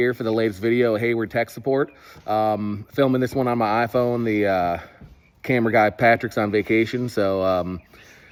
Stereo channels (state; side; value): identical; both; correlation 1.00